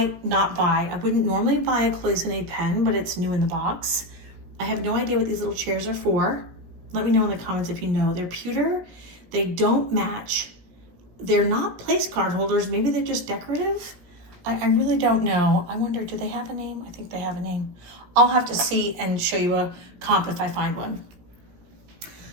not buy. I wouldn't normally buy a cloisonne pen, but it's new in the box. I have no idea what these little chairs are for. Let me know in the comments if you know. They're pewter. They don't match. They're not place card holders. Maybe they're just decorative. I really don't know. I wonder, do they have a name? I think they have a name. I'll have to see and show you a comp if I find one.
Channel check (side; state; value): left; late; 17 ms